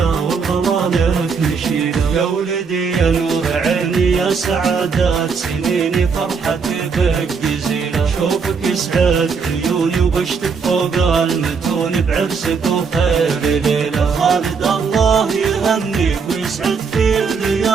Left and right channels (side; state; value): left; quieter; 5.5 dB